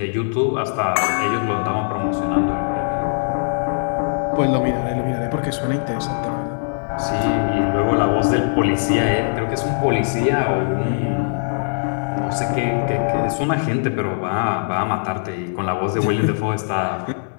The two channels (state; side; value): silent; right; digital silence